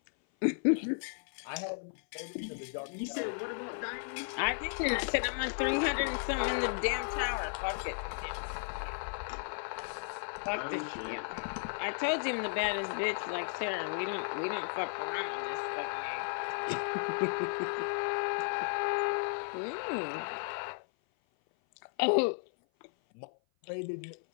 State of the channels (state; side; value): silent; right; 55 dB below the other